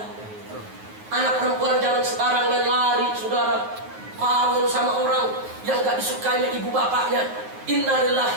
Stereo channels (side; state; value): left; late; 9.4 ms